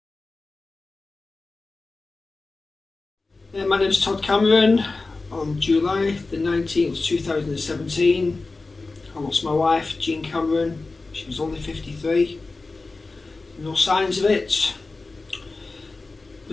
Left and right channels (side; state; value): right; quieter; 3.6 dB